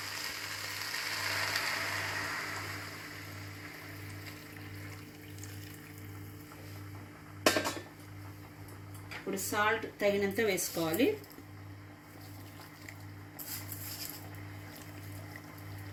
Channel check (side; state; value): both; identical; correlation 1.00